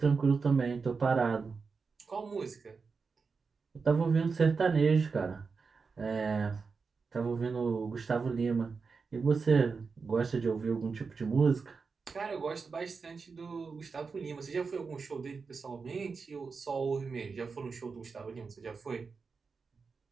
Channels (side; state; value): left; quieter; 4.9 dB